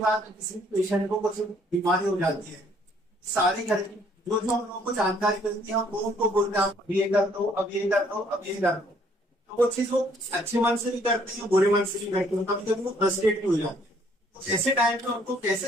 में किसी भी पेशेंट को कुछ बीमारी हो जाती है, सारे घर की जो जो हम लोगों को जानकारी मिलती है हम लोगों को बोलते हैं अब ये कर दो, अब ये कर दो, अब ये कर दो। तो वो चीज वो अच्छे मन से भी करते हैं, बुरे मन से भी करते हैं, कभी कभी वो फ्रस्ट्रेट भी हो जाते हैं। तो ऐसे टाइम में उनको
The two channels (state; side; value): normal; both; correlation 0.63